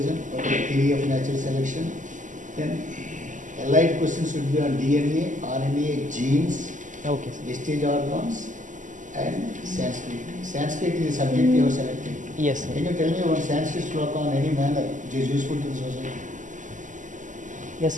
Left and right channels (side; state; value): left; late; 0.37 ms